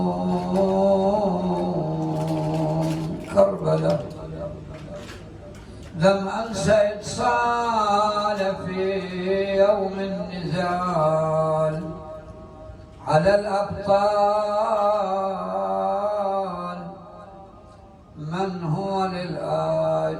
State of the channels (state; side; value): identical; both; correlation 1.00